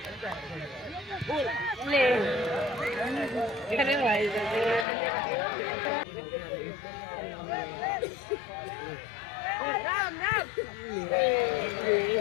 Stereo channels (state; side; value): drops out; right; at 4.9 s